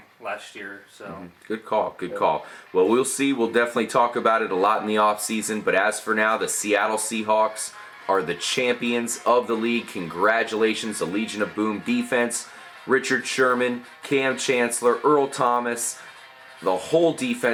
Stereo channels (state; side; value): identical; both; correlation 1.00